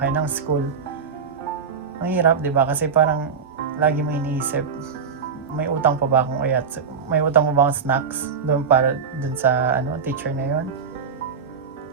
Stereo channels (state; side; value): quieter; left; 6.2 dB